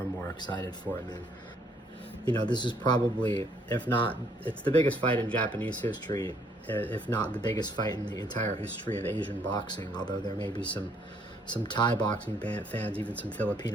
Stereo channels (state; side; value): normal; both; correlation 0.66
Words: and more excited for it, man. You know, this is probably, if not, it's the biggest fight in Japanese history, if not the biggest fight in the entire history of Asian boxing, although there may be some Thai boxing fans, even some